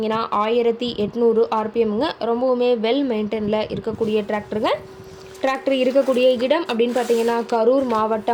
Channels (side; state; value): both; identical; correlation 1.00